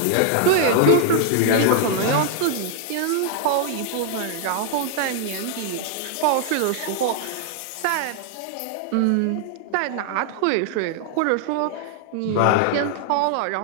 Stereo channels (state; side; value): different; both; correlation 0.00